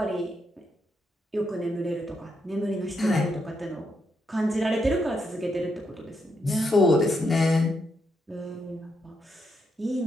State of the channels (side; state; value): both; normal; correlation 0.80